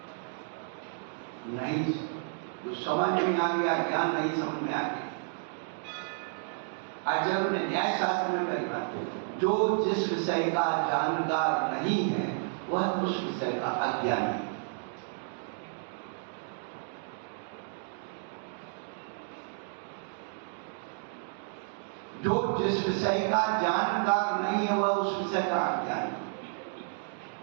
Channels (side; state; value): left; silent; digital silence